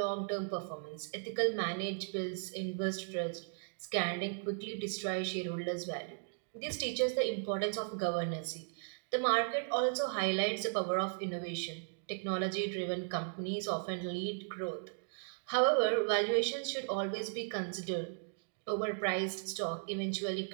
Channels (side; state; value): left; silent; digital silence